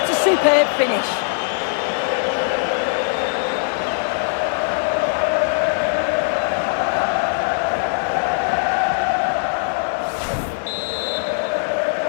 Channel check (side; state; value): right; silent; 65 dB below the other